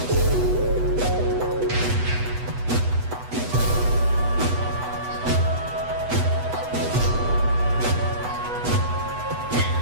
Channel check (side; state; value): left; late; 8.1 ms